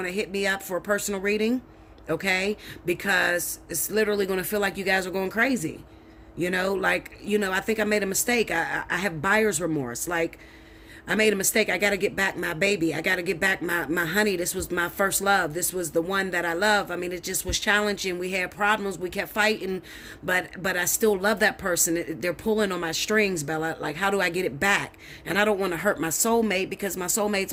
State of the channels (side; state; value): both; identical; correlation 1.00